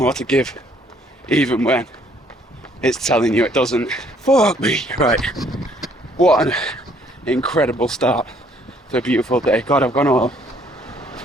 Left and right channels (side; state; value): both; normal; correlation 0.64